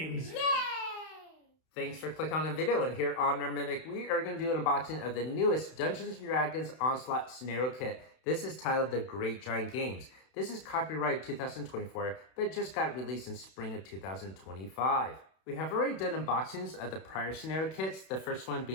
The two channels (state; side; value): late; right; 31 ms